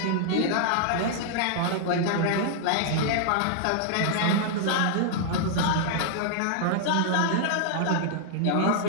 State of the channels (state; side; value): different; both; correlation -0.01